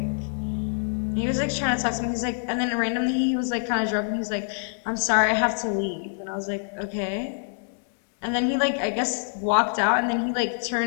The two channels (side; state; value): right; silent; digital silence